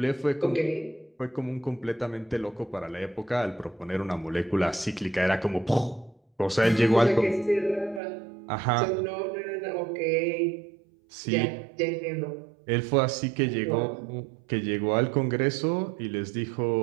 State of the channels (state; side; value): drops out; left; at 8.0 s